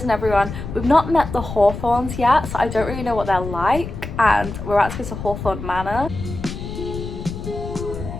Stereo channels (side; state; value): left; noise; rumble, 8 dB below the sound